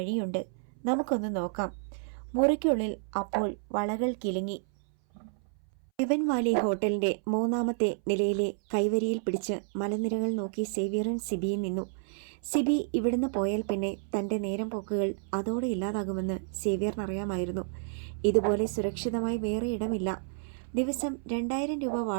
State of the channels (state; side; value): silent; left; 58 dB below the other